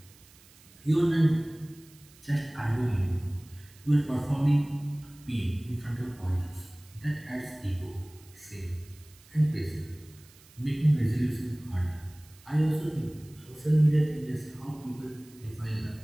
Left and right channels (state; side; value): noise; right; hiss, 25 dB below the sound